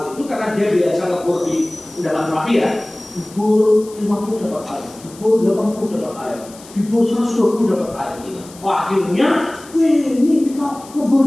itu karena dia biasa ngebor di dalam rapi ya, dibor 50 dapat air, dibor 80 dapat air, dibor 120 dapat air. Wah, akhirnya, ini kita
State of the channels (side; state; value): left; noise; hiss, 20 dB below the sound